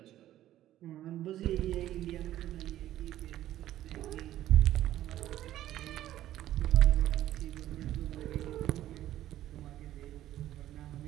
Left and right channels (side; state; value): left; quieter; 13.2 dB